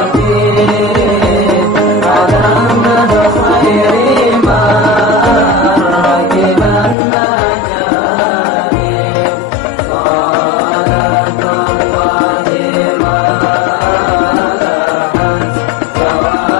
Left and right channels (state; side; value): drops out; right; at 7.0 s